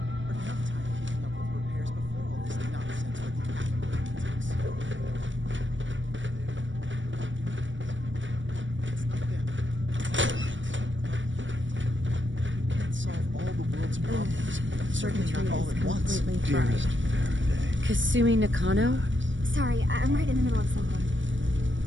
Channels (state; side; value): late; left; 0.55 ms